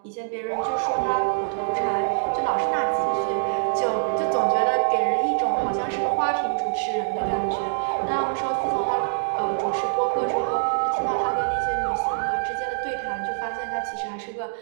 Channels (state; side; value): silent; left; digital silence